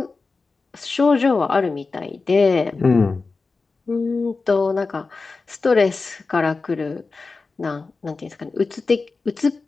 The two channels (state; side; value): quieter; right; 4.1 dB